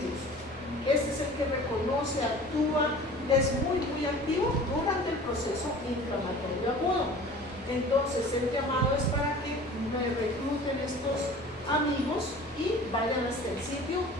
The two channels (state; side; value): normal; both; correlation 0.43